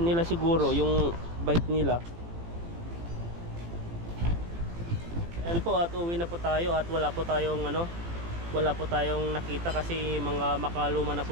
nila siguro, yung bike nila. Ayan po, at uwi na po tayo at wala po tayong ano, wala po tayong nakita kasi mga makaluma na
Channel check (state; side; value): late; left; 18 ms